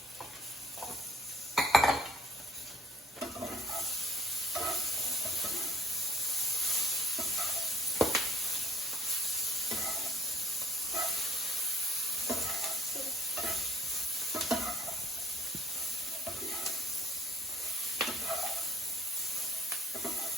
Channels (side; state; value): both; normal; correlation 0.58